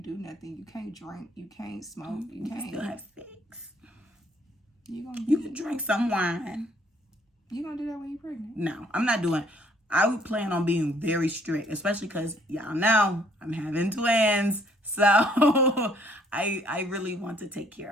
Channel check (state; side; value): normal; both; correlation 0.63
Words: do nothing. You can't drink. You can't smoke. You can't. Still have sex. You can drink some wine. You gonna do that when you're pregnant? No, I'm not doing. I would plan on being very strict, especially because y'all know I'm having twins. So I really want to take care